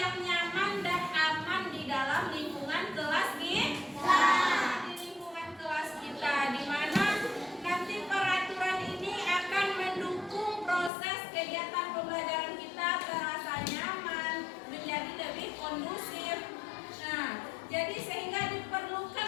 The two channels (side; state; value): right; drops out; at 10.9 s